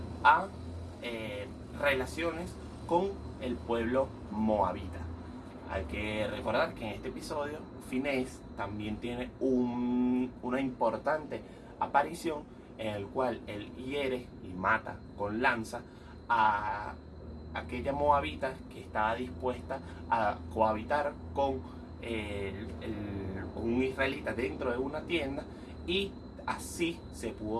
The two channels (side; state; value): both; identical; correlation 1.00